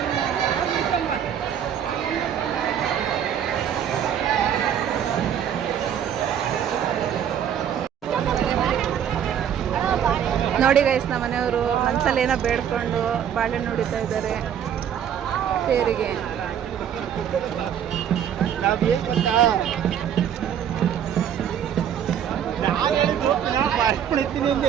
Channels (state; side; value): quieter; left; 9.1 dB